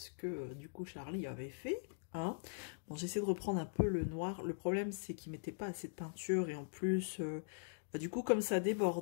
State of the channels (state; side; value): silent; right; digital silence